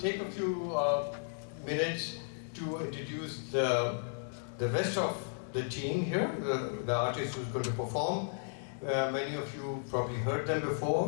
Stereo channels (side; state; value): right; silent; 55 dB below the other